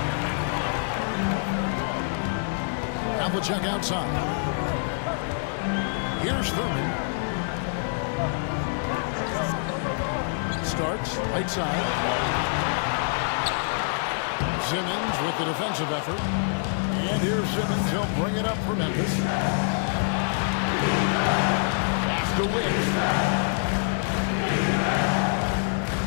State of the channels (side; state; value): right; silent; digital silence